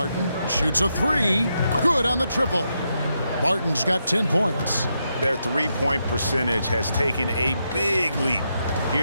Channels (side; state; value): both; inverted; correlation -0.83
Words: Shoots a 3. Good on the triple. Barton's got 10 points. Their three-point percentage has taken a big leap